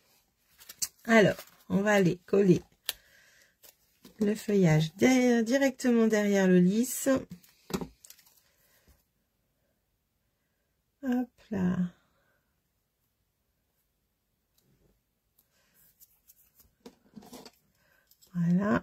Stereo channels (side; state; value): both; identical; correlation 1.00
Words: Alors, on va aller coller le feuillage directement derrière le lisse. Hop là.